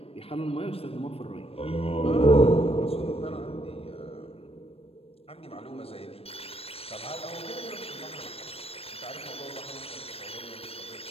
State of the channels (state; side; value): late; right; 0.28 ms